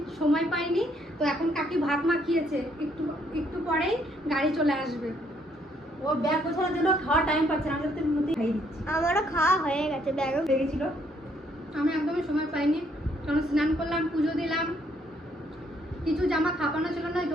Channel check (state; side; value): normal; both; correlation 0.69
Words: সময় পাইনি, তো এখন কাকি ভাত মাখিয়েছে, একটু একটু পরেই গাড়ি চলে আসবে। ও ব্যাগ গোছানোর জন্য খাওয়ার টাইম পাচ্ছে না, আমি তো মধ্যে খাইয়ে দিচ্ছি। আমারও খাওয়া হয়ে গেছে, ব্যাগও হয়ে গেছিল। আমি একদমই সময় পাইনি, কারণ স্নান করলাম, পুজো দিলাম, কিছু জামা খাপানো ছিল না,